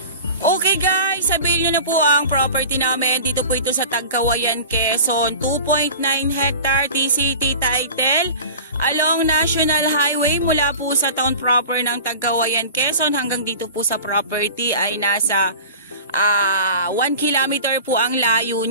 Okay guys, sabihin nyo na po ang property namin. Dito po ito sa Tagkawayan, Quezon. 2.9 hectare TCT title along National Highway mula po sa town proper ng Tagkawayan, Quezon hanggang dito po sa property ay nasa 1 kilometer po ang layo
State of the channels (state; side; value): inverted; both; correlation -0.38